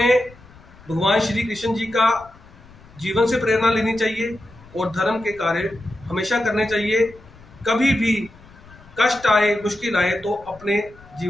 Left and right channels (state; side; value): noise; left; rumble, 23 dB below the sound